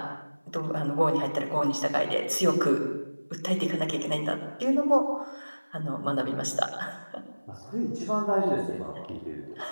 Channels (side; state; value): both; inverted; correlation -1.00